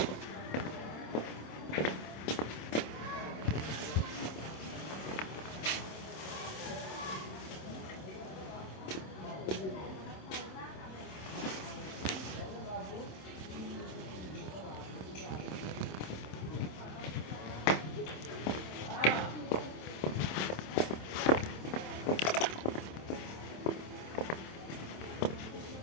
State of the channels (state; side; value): late; right; 27 ms